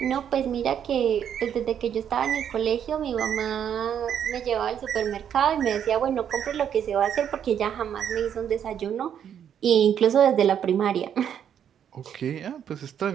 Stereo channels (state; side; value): quieter; left; 8.9 dB